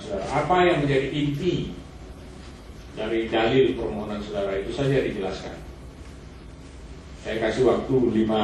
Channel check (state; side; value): identical; both; correlation 1.00